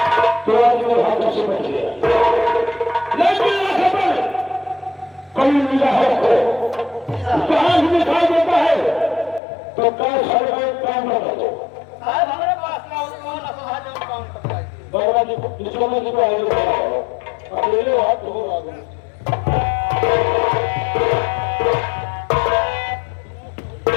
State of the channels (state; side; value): drops out; right; at 9.4 s